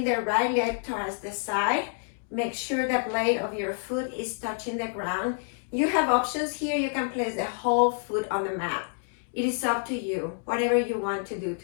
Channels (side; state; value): right; silent; digital silence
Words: the right leg towards the side. Make sure the blade of your foot is touching the ground. You have options here. You can place the whole foot on the mat. It is up to you, whatever you want to do